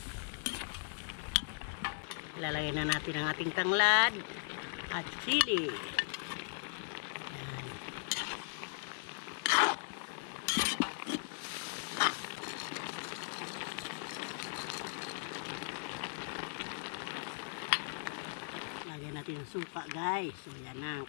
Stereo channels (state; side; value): silent; right; digital silence